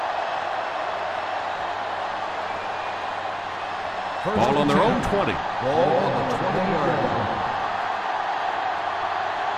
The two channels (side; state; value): both; identical; correlation 1.00